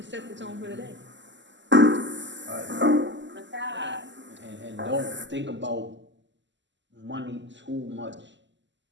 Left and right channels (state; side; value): late; left; 0.53 ms